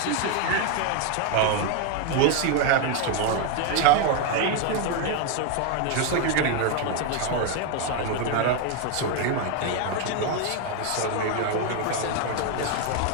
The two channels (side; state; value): both; different; correlation 0.01